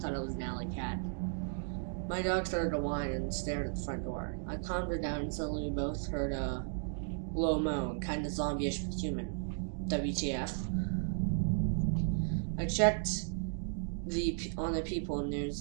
thought it was an alley cat. My dog started to whine and stared at the front door. I calmed her down and suddenly we both heard a low moan, kind of zombie-ish but human. WTF. I checked on the people and there's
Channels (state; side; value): silent; left; digital silence